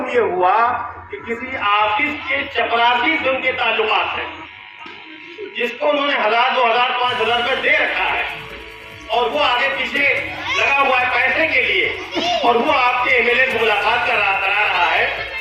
یہ ہوا کہ کسی آفس کے چپراسی سے ان کے تعلقات ہیں، جس کو انہوں نے 1000 2000 5000 روپے دے رکھا ہے، اور وہ آگے پیچھے لگا ہوا ہے پیسے کے لیے، اور وہ آپ کے MLA سے ملاقات کرا رہا ہے،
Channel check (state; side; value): identical; both; correlation 1.00